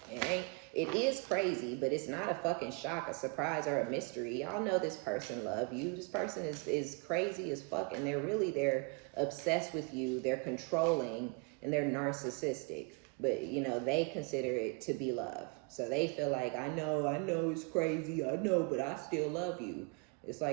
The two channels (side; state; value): left; quieter; 32.5 dB